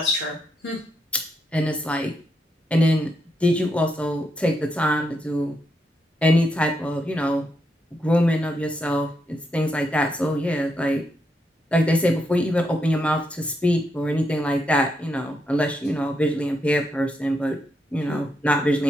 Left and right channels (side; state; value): both; normal; correlation 0.81